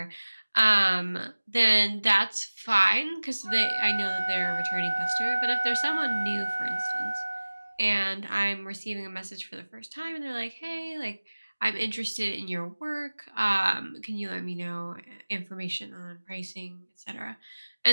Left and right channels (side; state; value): both; inverted; correlation -1.00